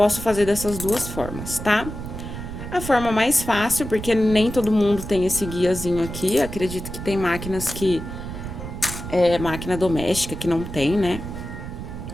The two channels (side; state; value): right; noise; rumble, 8 dB below the sound